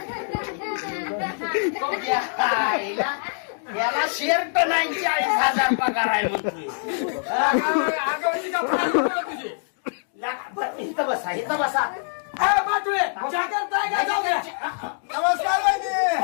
आईला याला शर्ट नाही 40,000 पगार आहे म्हणतोय आगाऊची का फार तुझी बरं, इथं बसा इथं बसा ए बाटुळे चहा करताय का जाऊ द्या नमस्कार वहिनी.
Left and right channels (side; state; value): right; silent; digital silence